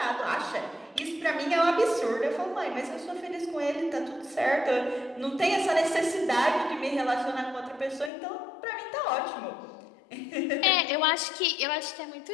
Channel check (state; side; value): drops out; right; at 8.1 s